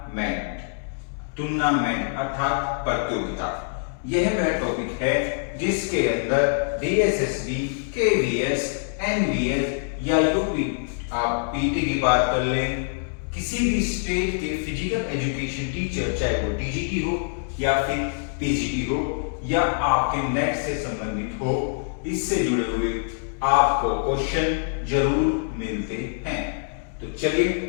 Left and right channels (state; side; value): silent; right; digital silence